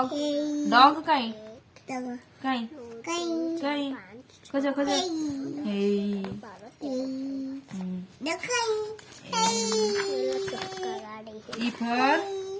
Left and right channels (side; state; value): both; identical; correlation 1.00